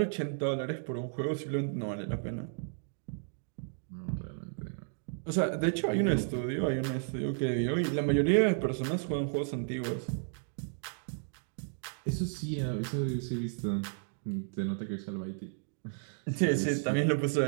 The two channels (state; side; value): silent; left; digital silence